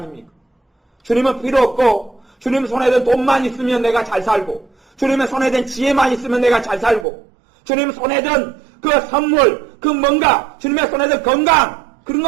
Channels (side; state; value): left; drops out; at 7.1 s